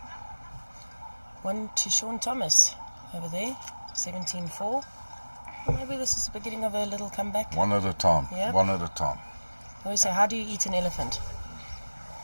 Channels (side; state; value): both; inverted; correlation -1.00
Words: One to Sean Thomas over there, 17-4. Well, maybe this is the beginning of a little comeback. One at a time. Yeah. One at a time. I always say, how do you eat an elephant?